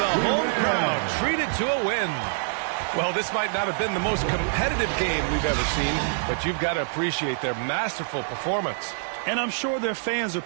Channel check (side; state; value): left; silent; digital silence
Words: home crowd treated to a win. Well, this might not have been the most competitive game we've ever seen, but you've got to appreciate their masterful performance. And I'm sure their fans